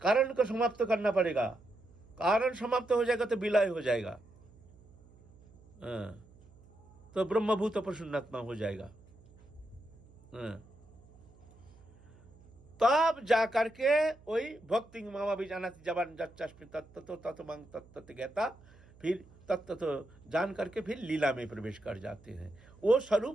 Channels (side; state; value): right; noise; hum, 25 dB below the sound